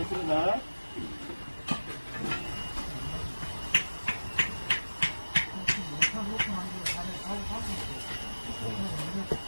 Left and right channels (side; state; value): both; inverted; correlation -1.00